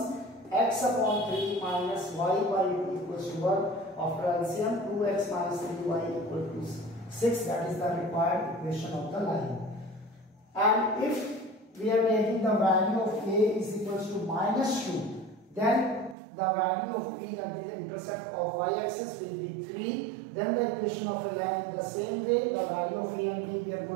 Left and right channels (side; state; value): left; drops out; at 16.2 s